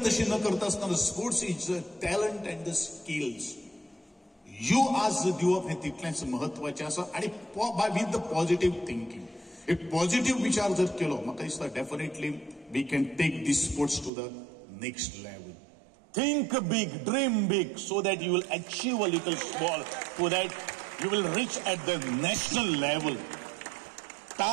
तशी न करता आसतना sports is talent and the skills. You आज दिवप हे तितलेंच महत्वाचें आसा. आणि विथ द पॉझिटिव्ह थिंकिंग, एक पॉझिटिव्ह विचार जर केलो म्हाका दिसता definitely we can take this sports to the next level. Think big, dream big, so that you will achieve a little small, so that you will reach at the national level.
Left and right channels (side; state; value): left; drops out; at 14.1 s